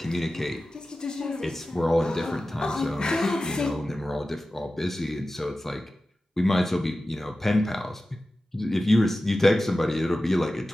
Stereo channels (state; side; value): normal; both; correlation 0.95